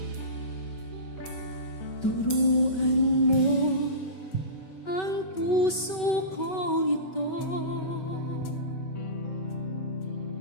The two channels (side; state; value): right; late; 5.3 ms